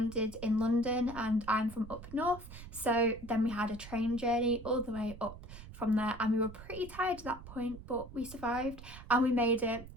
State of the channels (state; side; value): noise; right; rumble, 14 dB below the sound